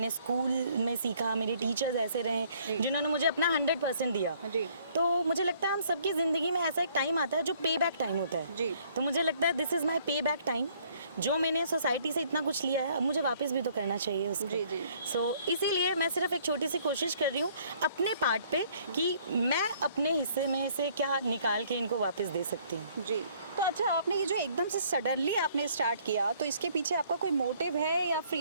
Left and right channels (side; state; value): both; inverted; correlation -0.62